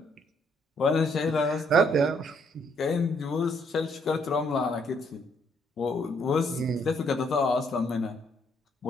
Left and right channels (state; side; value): normal; both; correlation 0.69